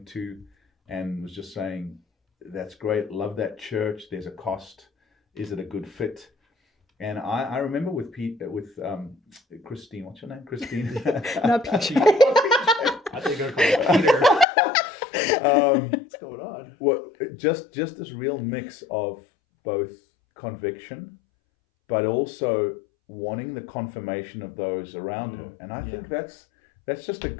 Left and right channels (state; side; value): drops out; right; at 14.5 s